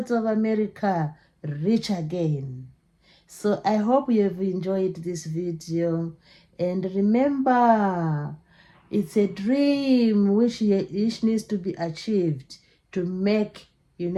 of America rich again. So I hope you have enjoyed this video, and remember, it's a dream which needs to be achieved to make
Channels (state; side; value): identical; both; correlation 1.00